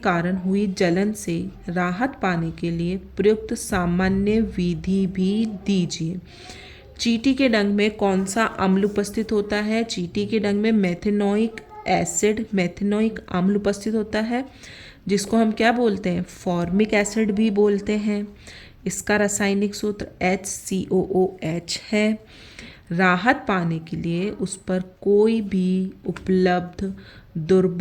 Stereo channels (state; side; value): identical; both; correlation 1.00